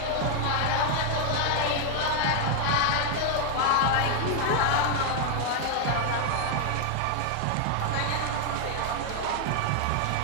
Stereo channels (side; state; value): both; different; correlation 0.00